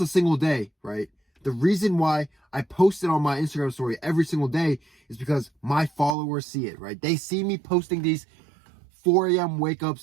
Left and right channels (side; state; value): left; drops out; at 6.2 s